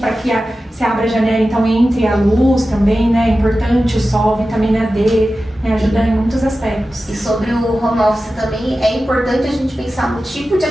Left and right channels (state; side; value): normal; both; correlation 0.94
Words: que se abra a janela, então entre a luz também, né? É importante o sol, vitamina D, né? Ajuda em muitos aspectos. E sobre o home office também, é importante a gente pensar no tipo de